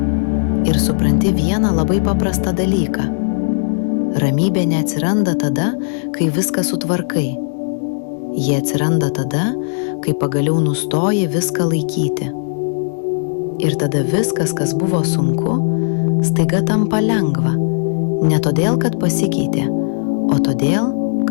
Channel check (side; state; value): right; silent; digital silence